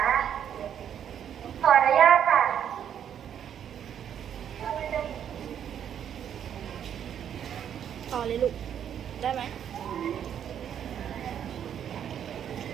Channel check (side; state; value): left; quieter; 9.2 dB